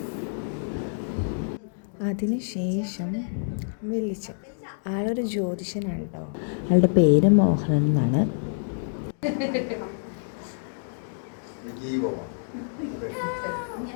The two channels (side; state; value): right; silent; digital silence